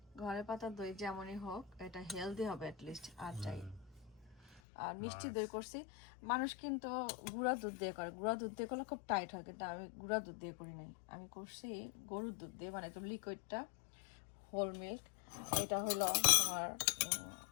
ঘরে পাতা দই যেমনই হোক, এটা হেলদি হবে অ্যাটলিস্ট, আর চাই। আর মিষ্টি দই করছি, মানুষ কিন্তু গুঁড়া দুধ দিয়ে করে, গুঁড়া দুধ দিয়ে করলে খুব টাইট হয়, কিন্তু আমি গুঁড়া দুধ দিয়ে করি নাই, আমি করছি গরুর দুধ দিয়ে, মানে একদম লিকুইডটা, হোল মিল্ক। এটা হলো তোমার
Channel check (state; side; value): drops out; right; at 4.6 s